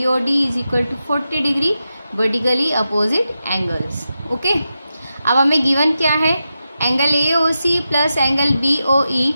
O D is equal to 40 degree, vertically opposite angles. Okay, अब हमें गिवन क्या है, angle A O C plus angle B O E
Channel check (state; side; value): inverted; both; correlation -0.90